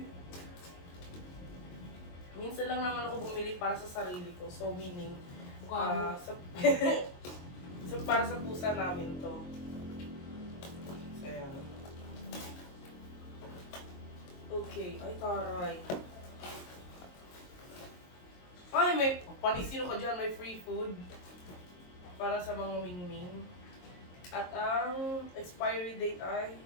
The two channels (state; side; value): late; right; 22 ms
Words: Minsan lang naman ako bumili para sa sarili ko. So meaning, sa so para sa pusa namin to. So yan. Okay, ay taray. Ay, may panisino ka dyan, may free food para sa mga mingming. At ang expiry date ay